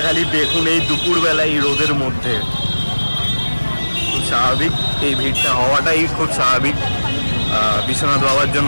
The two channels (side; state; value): both; inverted; correlation -1.00